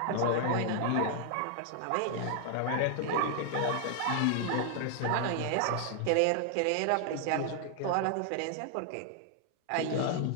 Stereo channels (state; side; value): different; both; correlation 0.00